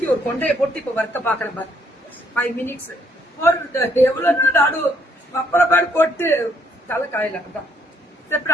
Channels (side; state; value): both; normal; correlation 0.69